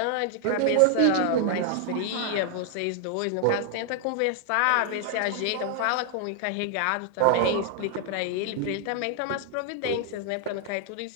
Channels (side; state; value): both; different; correlation 0.00